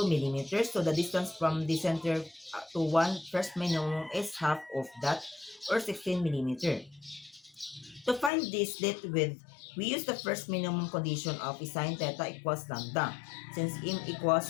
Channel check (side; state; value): right; drops out; at 8.3 s